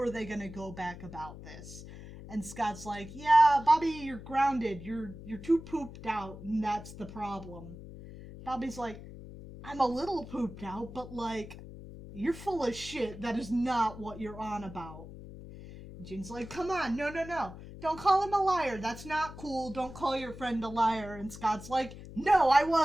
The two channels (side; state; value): left; noise; hum, 14 dB below the sound